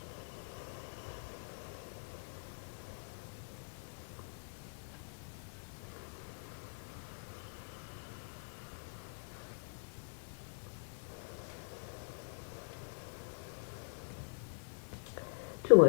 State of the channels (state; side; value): silent; right; digital silence